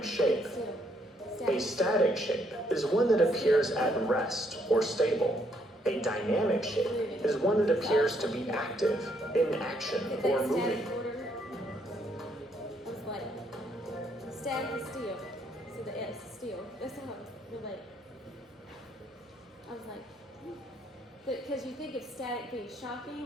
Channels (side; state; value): both; normal; correlation 0.71